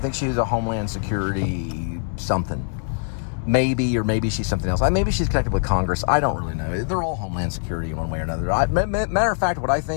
she is a Homeland Security something. Maybe, or maybe she's something else. Maybe she's connected with Congress. I don't really know. They're all Homeland Security in one way or another. Matter of fact, what I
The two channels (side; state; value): right; silent; 64 dB below the other